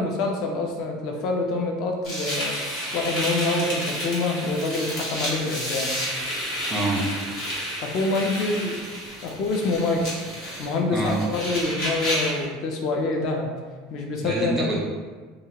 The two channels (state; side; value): normal; both; correlation 0.35